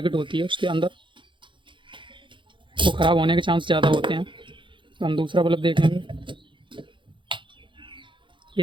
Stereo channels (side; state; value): left; late; 0.24 ms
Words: होती है उसके अंदर, वो ख़राब होने के चांस ज़्यादा होते हैं। तो हम दूसरा बल्ब देखेंगे।